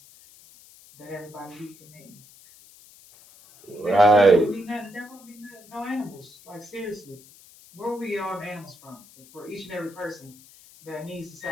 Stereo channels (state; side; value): noise; left; hiss, 23 dB below the sound